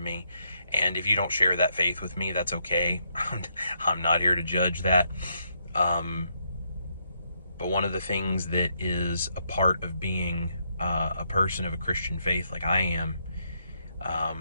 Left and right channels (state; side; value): inverted; both; correlation -0.76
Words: me. And if you don't share that faith with me, that's okay. I'm not here to judge that. But one of the things that is a part of being a person of a Christian faith like I am